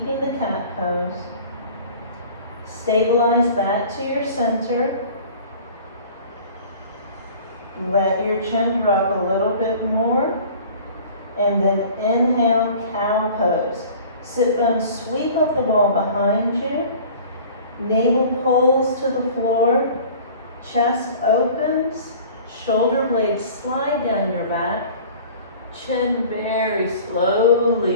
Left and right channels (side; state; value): both; inverted; correlation -0.46